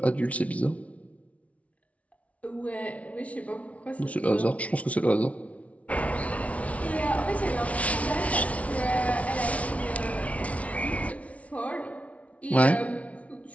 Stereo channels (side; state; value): right; late; 0.065 ms